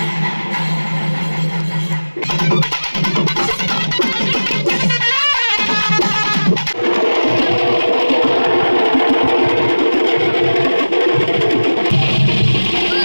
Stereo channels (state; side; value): inverted; both; correlation -1.00